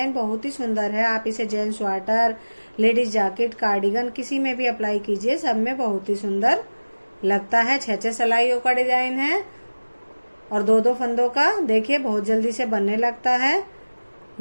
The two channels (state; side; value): inverted; both; correlation -1.00